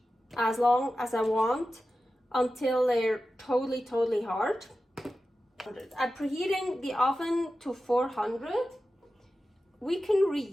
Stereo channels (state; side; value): normal; both; correlation 0.93